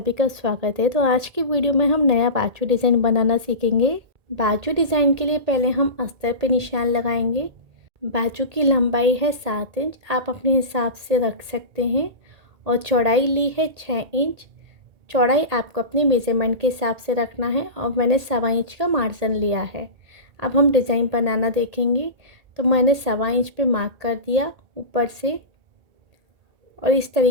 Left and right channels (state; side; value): late; left; 1.8 ms